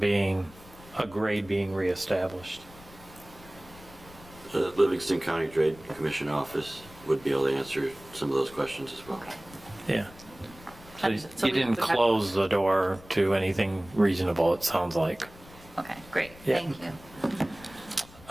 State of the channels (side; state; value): left; noise; rumble, 21 dB below the sound